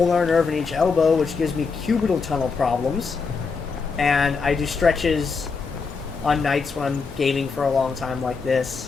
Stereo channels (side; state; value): right; quieter; 4.9 dB